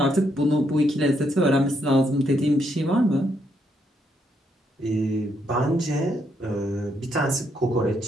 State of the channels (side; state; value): both; normal; correlation 0.75